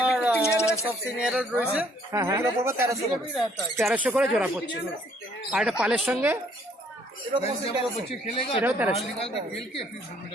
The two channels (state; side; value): normal; both; correlation 0.64